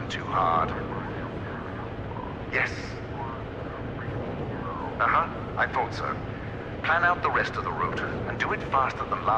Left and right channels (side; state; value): both; identical; correlation 1.00